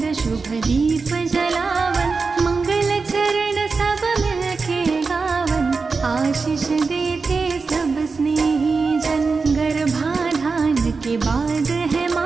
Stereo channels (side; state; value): left; quieter; 4.5 dB